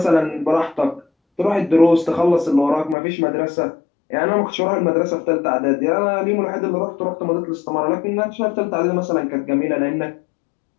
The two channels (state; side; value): drops out; right; at 3.0 s